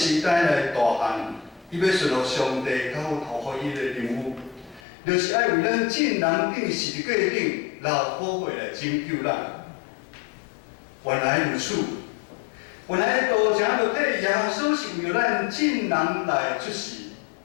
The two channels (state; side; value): drops out; right; at 4.8 s